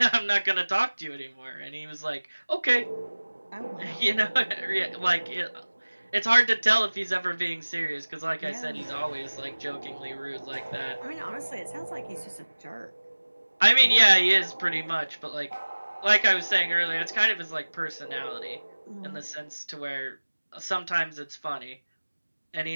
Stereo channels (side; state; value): both; inverted; correlation -1.00